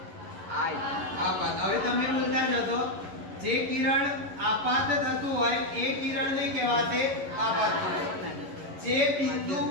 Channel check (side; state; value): left; late; 11 ms